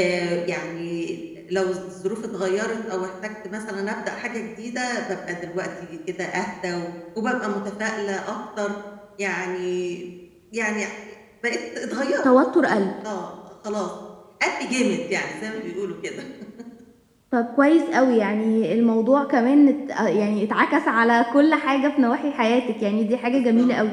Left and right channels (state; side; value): identical; both; correlation 1.00